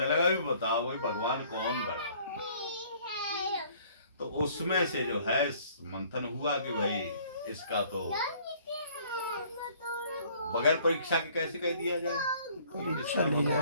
लगा भी बताओ भाई भगवान कौन बड़ा है। तो उसमें से जो है मंथन हुआ कि भाई इसका तो बगैर परीक्षा के कैसे कह दिया जाए, परीक्षा ली जाए।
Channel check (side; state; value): both; inverted; correlation -0.57